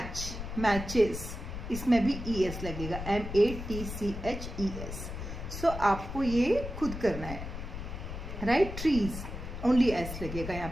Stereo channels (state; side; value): noise; left; rumble, 7 dB below the sound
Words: matches. इसमें भी ES लगेगा, MATCHES. So आपको ये खुद करना है, right? Trees, only S लगेगा यहाँ